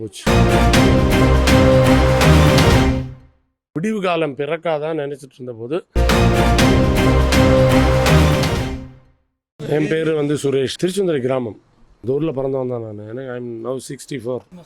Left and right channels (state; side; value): identical; both; correlation 1.00